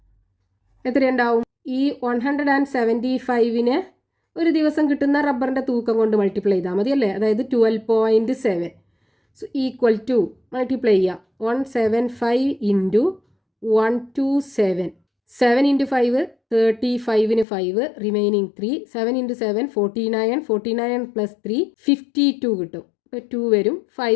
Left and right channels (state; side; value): drops out; right; at 17.4 s